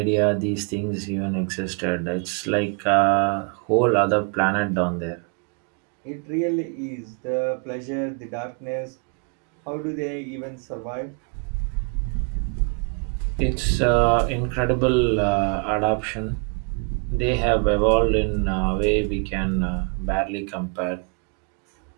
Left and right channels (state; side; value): quieter; left; 37.3 dB